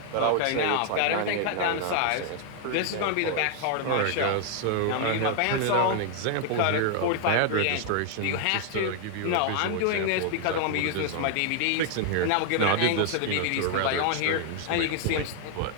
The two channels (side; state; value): both; different; correlation 0.00